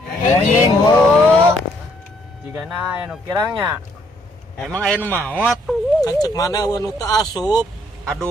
Enjing bu. Jigana aya nu kirangnya. Emang aya nu maot? Kan cek mana anu teu asup.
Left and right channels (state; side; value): normal; both; correlation 0.68